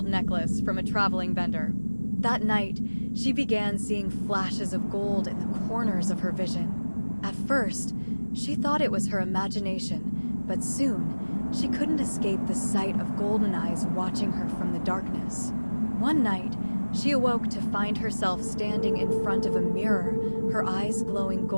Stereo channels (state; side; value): inverted; both; correlation -1.00